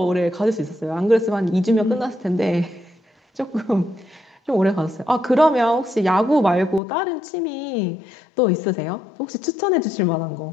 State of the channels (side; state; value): right; drops out; at 6.8 s